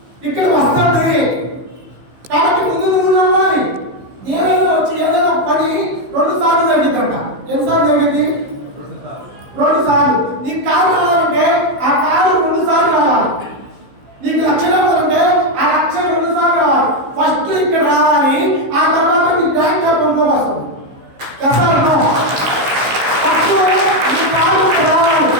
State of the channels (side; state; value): left; late; 15 ms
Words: ఇక్కడ వస్తుంది కాబట్టి ముందు నువ్వు నవ్వాలి. ఏదైనా వచ్చి ఏదైనా పని 2 సార్లు జరిగిద్దంట. ఎన్నిసార్లు జరిగింది? 2 సార్లు. నీకు కారు రావాలంటే ఆ కారు 2 సార్లు రావాలి. నీకు లక్ష్యం రావాలంటే ఆ లక్ష్యం 2 సార్లు రావాలి. ఫస్ట్ ఇక్కడ రావాలి, ఆ తర్వాత నీ బ్యాంక్ అకౌంట్లో వస్తుంది. ఫస్ట్ నీ కారు రావాలి,